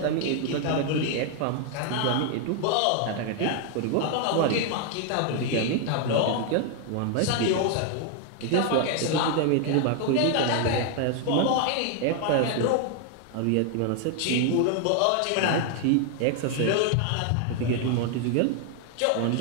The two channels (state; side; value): different; both; correlation 0.00